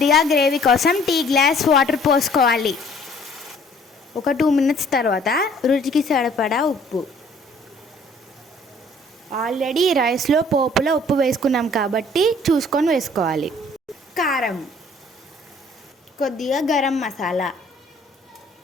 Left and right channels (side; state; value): both; normal; correlation 0.56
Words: గ్రేవీ కోసం టీ గ్లాస్ వాటర్ పోసుకోవాలి. ఒక 2 minutes తర్వాత రుచికి సరిపడా ఉప్పు. ఆల్రెడీ రైస్లో పోపులో ఉప్పు వేసుకున్నాం కాబట్టి చూసుకొని వేసుకోవాలి. కారం, కొద్దిగా గరం